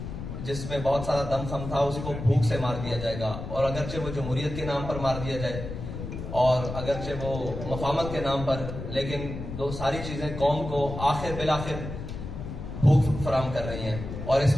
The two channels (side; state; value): left; noise; rumble, 8 dB below the sound